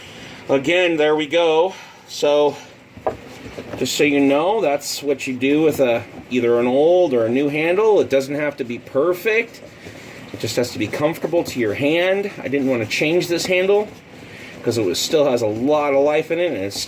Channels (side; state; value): both; identical; correlation 1.00